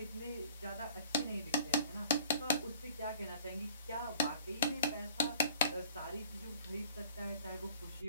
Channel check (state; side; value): inverted; both; correlation -0.49